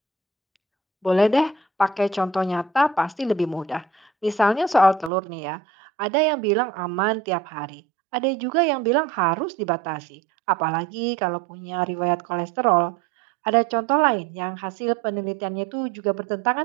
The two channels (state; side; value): drops out; left; at 5.1 s